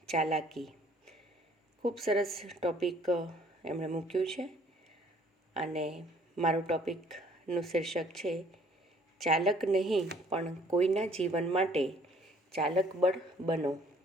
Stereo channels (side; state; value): both; normal; correlation 0.59